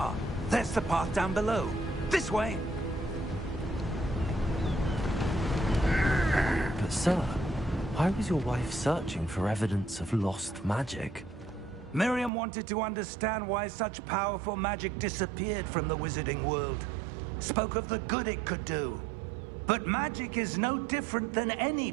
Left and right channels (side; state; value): left; drops out; at 12.3 s